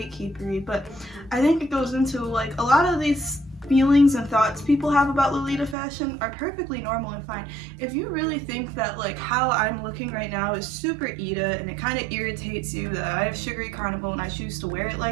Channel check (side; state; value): left; drops out; at 5.8 s